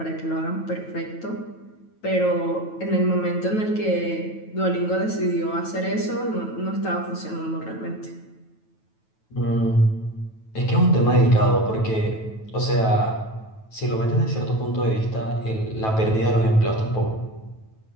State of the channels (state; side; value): late; right; 9.2 ms